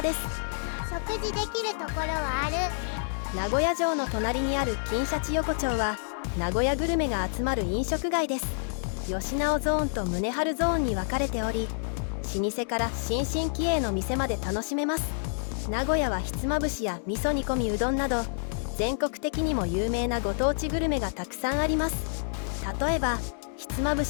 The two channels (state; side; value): silent; right; digital silence